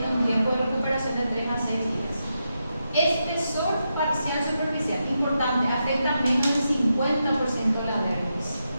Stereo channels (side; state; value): both; inverted; correlation -0.86